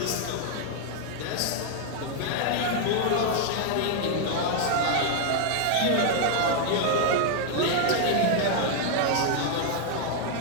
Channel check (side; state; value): both; different; correlation 0.00